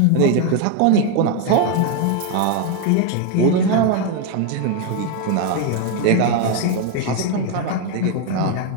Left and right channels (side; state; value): both; different; correlation 0.01